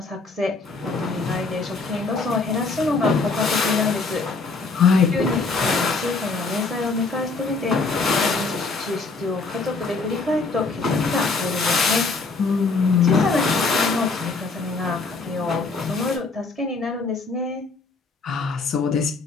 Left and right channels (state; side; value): quieter; right; 4.0 dB